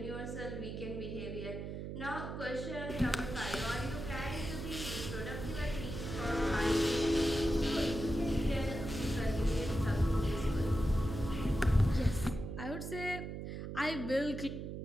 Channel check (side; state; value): right; noise; hum, 6 dB below the sound